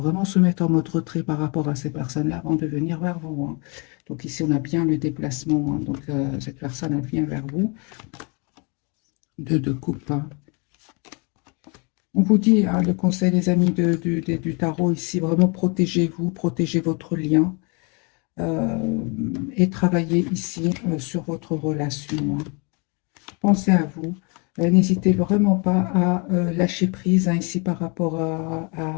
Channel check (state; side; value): quieter; right; 32.3 dB